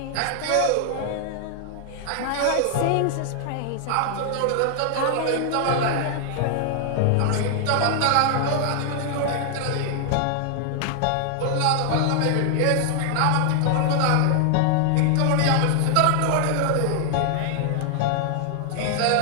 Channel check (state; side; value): different; both; correlation 0.00